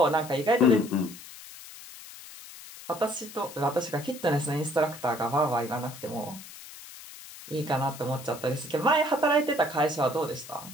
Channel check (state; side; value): noise; left; hiss, 16 dB below the sound